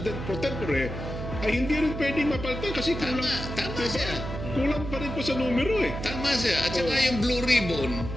pro tempore ay hindi rin pwedeng mapalitan kasi kulang. Tama siya. Kulang pa rin po sa numero Tama siya. At saka yung Blue Ribbon,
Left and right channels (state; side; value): noise; right; hum, 7 dB below the sound